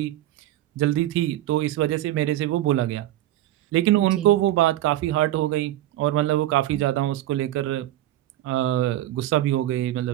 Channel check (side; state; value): left; quieter; 14.3 dB